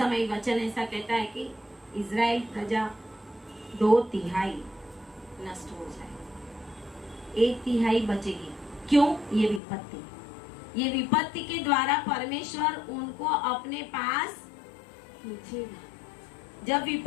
वचन ऐसा कहता है कि इजराइल प्रजा 2/3 नष्ट हो जाए, 1/3 बचेगी। क्यों? ये विपत्ति के द्वारा परमेश्वर उनको अपने पास पूछेगा। जब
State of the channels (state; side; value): drops out; right; at 9.6 s